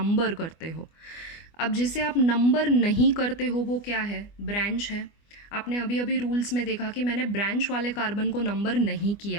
करते हो. अब जिसे आप नंबर नहीं करते हो वो क्या है, ब्रांच है. आपने अभी अभी रूल्स में देखा कि मैंने ब्रांच वाले कार्बन को नंबर नहीं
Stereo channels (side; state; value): right; late; 24 ms